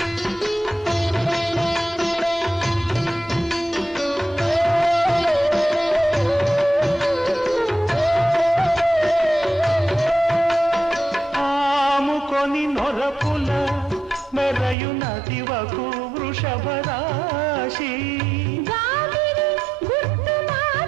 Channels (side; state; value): left; drops out; at 14.8 s